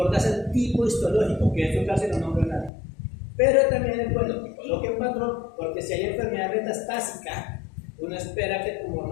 es el tipo histológico, que eso casi no nombra nadie. Pero también es bueno que coloque un patrón, porque si hay enfermedad metastásica, uno espera que el tumor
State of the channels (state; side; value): drops out; right; at 2.7 s